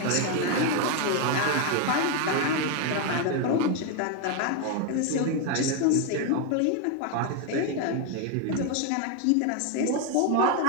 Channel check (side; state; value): both; different; correlation 0.01